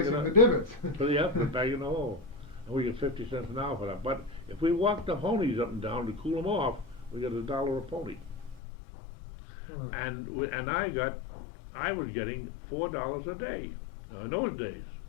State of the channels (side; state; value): right; drops out; at 8.6 s